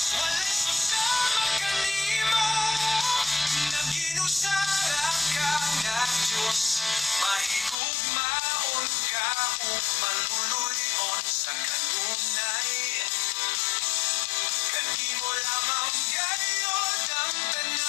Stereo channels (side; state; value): right; drops out; at 7.8 s